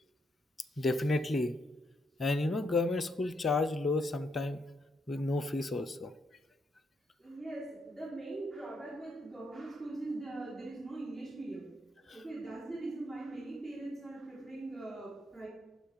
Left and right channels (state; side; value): normal; both; correlation 0.77